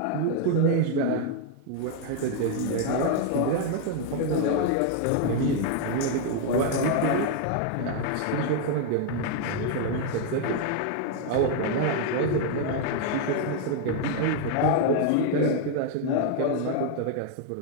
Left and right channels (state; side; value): different; both; correlation 0.01